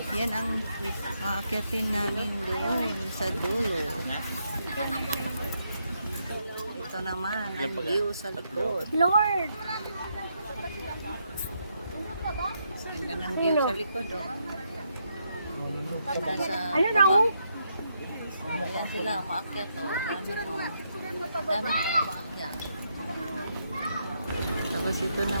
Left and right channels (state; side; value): inverted; both; correlation -0.78